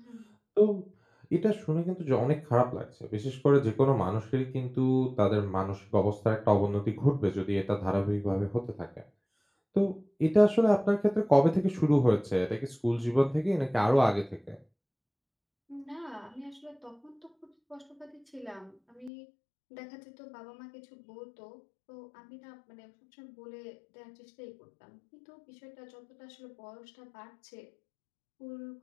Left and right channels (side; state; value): right; drops out; at 19.1 s